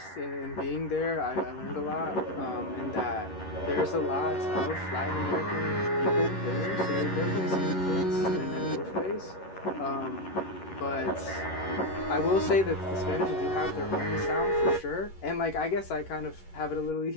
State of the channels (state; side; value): late; right; 11 ms